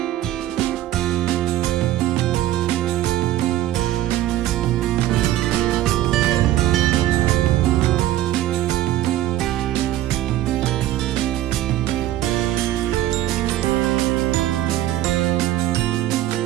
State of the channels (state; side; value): quieter; left; 13.9 dB